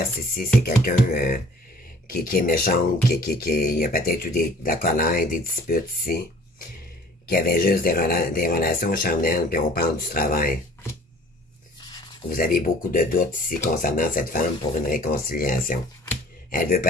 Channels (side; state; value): both; normal; correlation 0.50